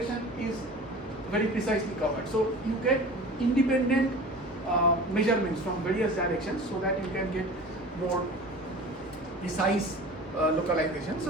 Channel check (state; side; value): normal; both; correlation 0.38